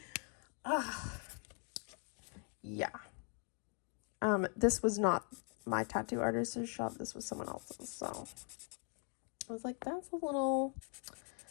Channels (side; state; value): right; quieter; 38.5 dB